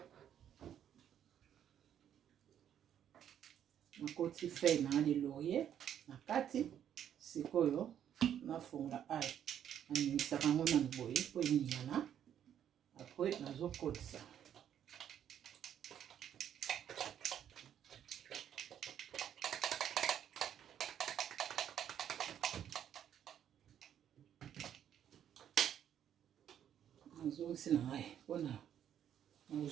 nakoti feuille na de laurier na kati sikoyo nafunga ai naningisaka yango nanu boye po eningana apres nazokotisa nazongisi na ngai mpona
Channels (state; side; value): quieter; left; 9.8 dB